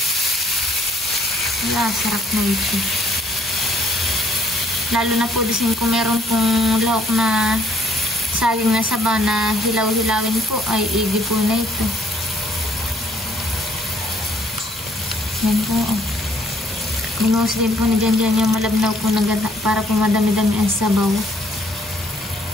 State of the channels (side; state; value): both; normal; correlation 0.64